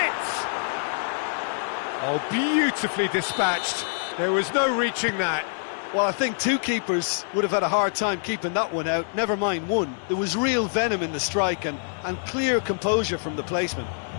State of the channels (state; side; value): silent; right; digital silence